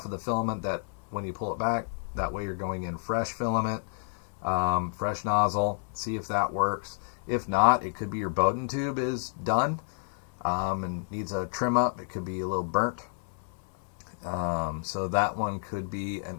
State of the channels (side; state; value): right; silent; 58 dB below the other